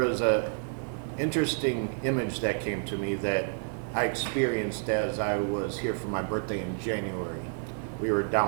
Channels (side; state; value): left; silent; 58 dB below the other